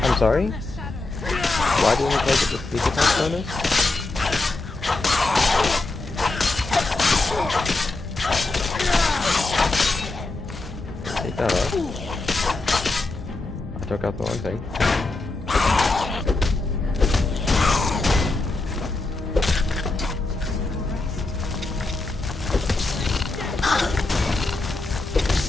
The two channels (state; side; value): quieter; right; 3.2 dB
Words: I'm sorry? Why do we only get the sneak attack bonus? Take that off. I took out the wrong thing.